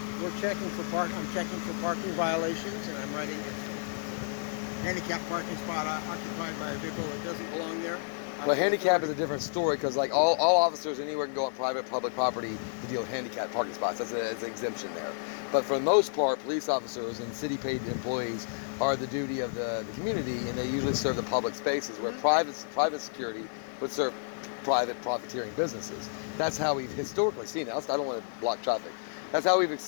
checking for I'm checking for parking violations, and I'm writing it's a handicapped parking spot occupied by a vehicle that doesn't belong there. Well, handicap is a different story because, like, all officers anywhere can go on public property to deal with handicapped parking spots. That's an exemption there. But for the most part, police officers and city-paid employees are the duty of the community, and they usually serve the public spaces where private security would serve private profiteering businesses. That's how we've historically seen it. I don't want to block traffic. That's how we've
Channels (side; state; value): right; silent; digital silence